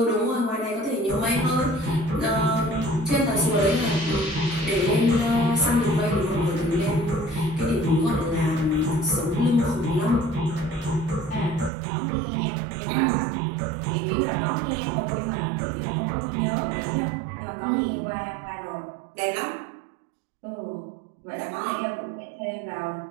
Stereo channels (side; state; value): left; drops out; at 11.7 s